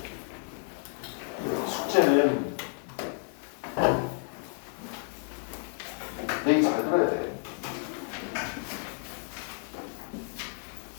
숙제는 얘기 잘 들어야 돼.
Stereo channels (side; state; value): right; silent; 57 dB below the other